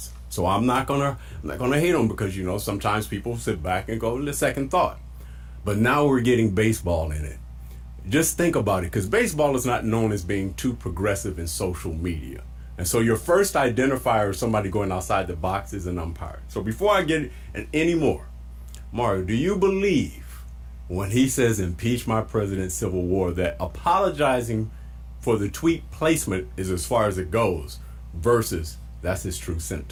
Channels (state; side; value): identical; both; correlation 1.00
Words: So I'm not gonna hate him, because sometimes people sit back and go to second thought. But now we're getting baseball in it. Just think about it, because baseball is not known as being too progressive in social media. And so your first identifier of somebody going outside the box is an umpire. So before I get any more, Mario, do you believe when he says impeach my president, civil war, that apologizing for the tweet placement is as far as it goes versus that's his true